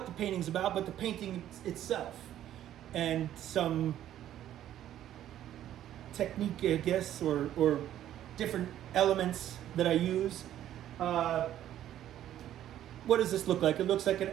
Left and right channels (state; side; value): quieter; left; 11.9 dB